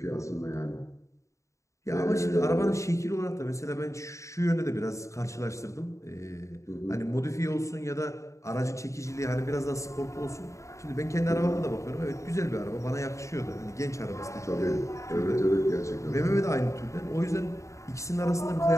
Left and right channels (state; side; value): late; right; 0.15 ms